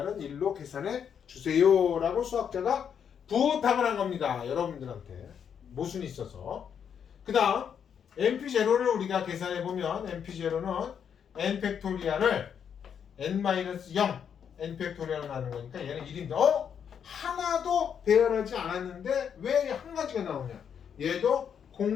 1로 계산해 주세요라고 수학자가 부탁을 한 겁니다. 여러분들한테 모순이 있어서. 그 다음 np0를 우리가 계산해 보면 np0는 n 팩토리얼을 n-0 n 팩토리얼로 하는 거니까 얘는 1인데 하나도 배열하지 않았는데 왜 한 가지가 나오냐? 얘도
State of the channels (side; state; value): right; quieter; 7.8 dB